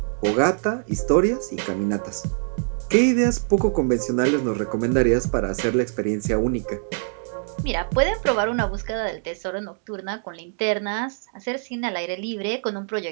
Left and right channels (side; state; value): left; silent; digital silence